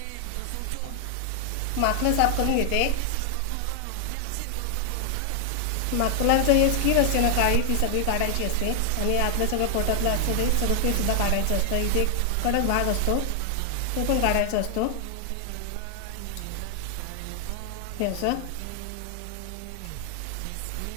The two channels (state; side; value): different; both; correlation 0.00